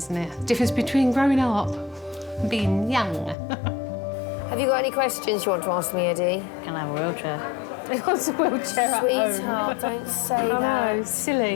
it? The difference between growing up and being young. Have you got any questions you want to ask me, Eddie? Can I have a wheelchair? He wants a wheelchair at home. Sweetheart, don't say I that. know,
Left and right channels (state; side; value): drops out; right; at 3.4 s